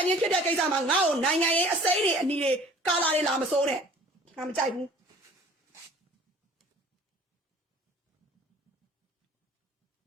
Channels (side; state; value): both; normal; correlation 0.49